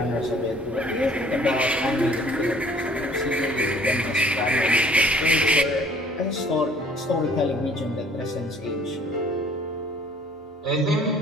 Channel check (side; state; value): both; normal; correlation 0.55